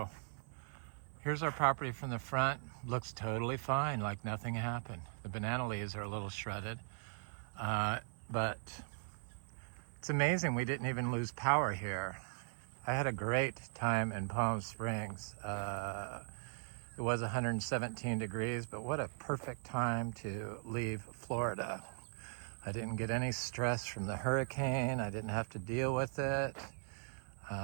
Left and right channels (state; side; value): silent; left; 51 dB below the other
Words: here's our property from the front. Looks totally fine, like nothing happened. The banana leaves are a little shredded, but it's amazing we didn't even lose power here. I had a great time in Palm Springs. It was 117 degrees, but what a perfect time to leave Florida. I didn't get any stress from the hurricane. I didn't have to deal with it.